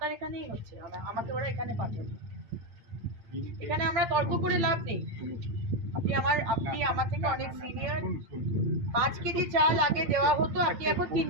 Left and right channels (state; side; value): late; left; 8.8 ms